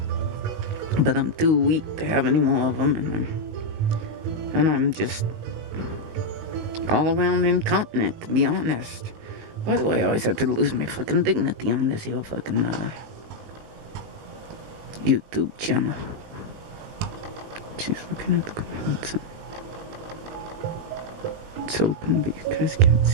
But I'm too weak to have any more of them, and I'm just all around incontinent, to be honest. Why do I always have to lose my fucking dignity on this here fucking YouTube channel? She's looking at the comments. It's open, but you guys can't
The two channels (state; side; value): late; left; 19 ms